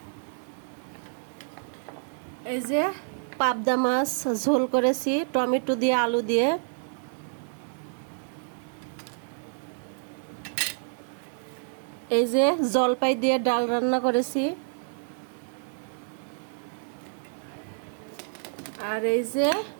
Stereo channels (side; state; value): left; silent; digital silence